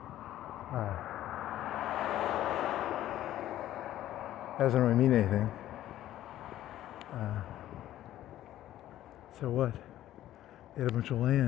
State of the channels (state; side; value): quieter; right; 13.3 dB